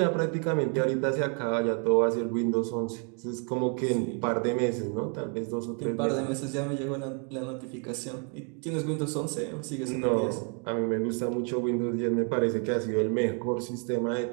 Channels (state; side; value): quieter; left; 38.3 dB